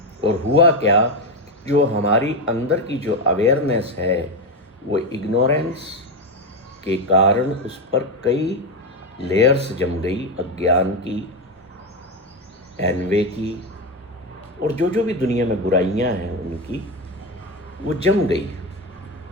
और हुआ क्या, जो हमारी अंदर की जो अवेयरनेस है वो इग्नोरेंस के कारण उस पर कई लेयर्स जम गई, अज्ञान की, एनवे की, और जो जो भी दुनिया में बुराइयां हैं उनकी, वो जम गई।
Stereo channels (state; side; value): normal; both; correlation 0.12